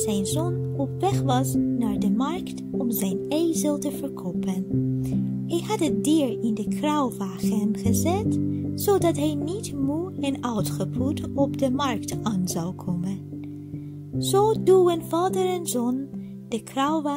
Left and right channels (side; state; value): both; identical; correlation 1.00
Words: zoon op weg was naar de markt om zijn ezel te verkopen. Hij had het dier in de kruiwagen gezet, zodat hij niet moe en uitgeput op de markt aan zou komen. Zo duwen vader en zoon de